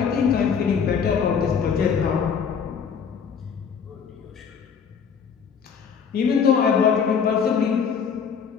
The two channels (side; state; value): right; quieter; 6.7 dB